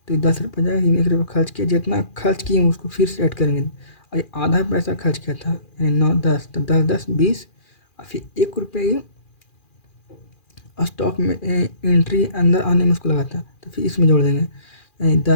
तो 10 रुपये जाएगा। 1 रुपया खर्च किया, जितना खर्च किए उसको फिर से ऐड करेंगे, और ये आधा पैसा खर्च किया था, यानी 9 10, तो 10 10 20, और फिर 1 रुपये स्टॉक में एंट्री अंदर आने में उसको लगा था, तो फिर इसमें जोड़ देंगे, यानी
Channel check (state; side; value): late; right; 2.4 ms